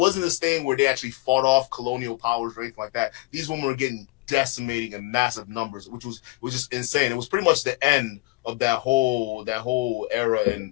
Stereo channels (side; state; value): right; quieter; 22.9 dB